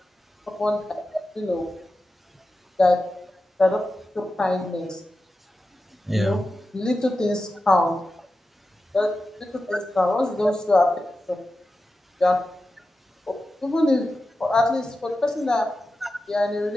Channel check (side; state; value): both; normal; correlation 0.92